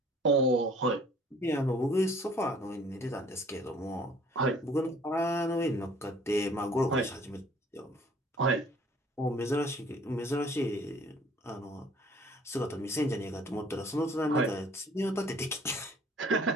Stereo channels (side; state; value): both; normal; correlation 0.55